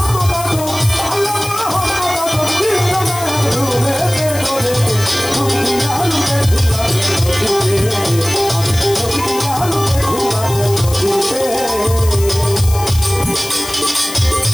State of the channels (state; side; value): noise; left; hiss, 11 dB below the sound